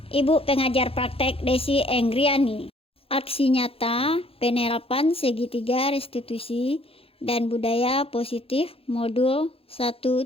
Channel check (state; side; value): late; right; 0.27 ms